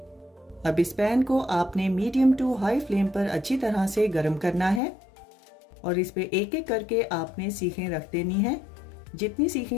अब इस पैन को आपने मीडियम टू हाई फ्लेम पर अच्छी तरह से गर्म करना है और इस पे एक एक करके आपने सीखें रख देनी है। जितनी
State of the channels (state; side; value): drops out; right; at 4.8 s